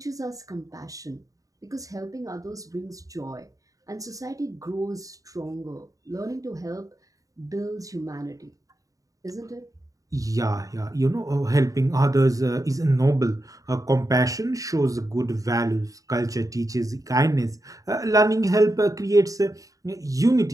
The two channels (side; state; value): left; late; 0.17 ms